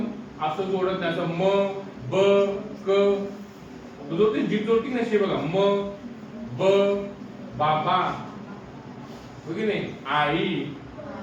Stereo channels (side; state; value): both; identical; correlation 1.00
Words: असं जोडत नाही. असं म ब क जोडते, जीभ जोडती नसते बघा. म ब बाबा हो की नाही? आई